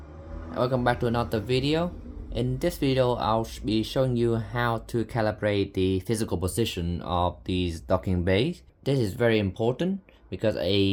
welcome back to another video. In this video, I'll be showing you how to calibrate the physical position of these docking bays. This is very important because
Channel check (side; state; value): both; identical; correlation 1.00